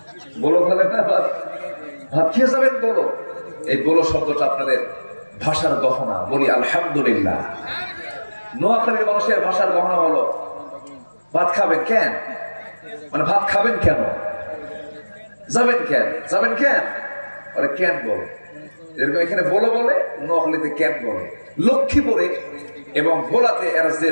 বলো বলে না, ভাত খেয়ে যাবেন বলো। এই বলো শব্দটা আপনাদের ভাষার গহনা। বলি আলহামদুলিল্লাহ। নোয়াখালীর মানুষের ভাষার গহনা বলো। ভাত খাবেন কেন? মানে ভাত খাবেন কেন? যাবেন কেন? যাবেন কেন? বলে কেন বলে। এরকম এখানে বলো বলে, নোয়াখালীতে কেন বলে। লক্ষ্মীপুরে এবং ভোলাতে এরা যে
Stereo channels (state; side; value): inverted; both; correlation -1.00